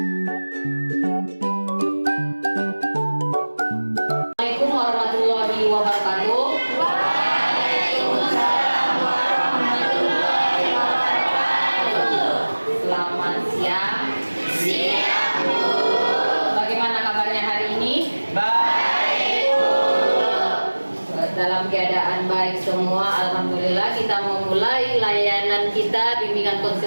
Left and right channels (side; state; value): both; inverted; correlation -1.00